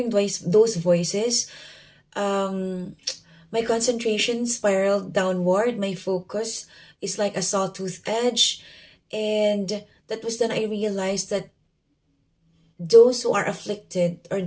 those voices, um, my concentration spiraled downward. My focus is like a sawtooth edge. And that was then I realized that those who are afflicted, or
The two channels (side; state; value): both; identical; correlation 1.00